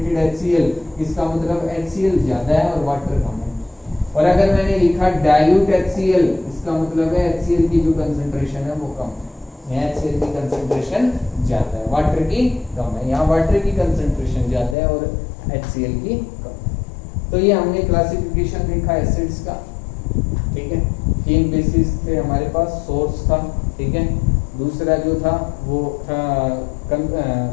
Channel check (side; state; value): right; drops out; at 14.8 s